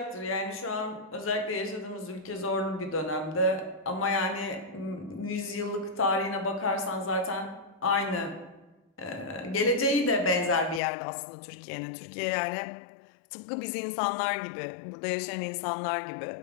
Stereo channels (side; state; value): right; drops out; at 10.8 s